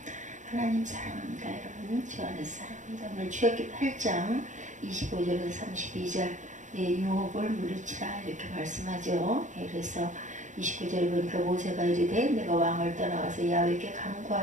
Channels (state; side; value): late; left; 0.36 ms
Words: 하나님 사랑합니다. 여러분 주 안에서 사랑합니다. 오늘 출애굽기 8장 25절에서 32절 유혹을 물리치라 이렇게 말씀하죠. 그래서 29절에 보니까 모세가 이르되 내가 왕을 떠나와서 야훼께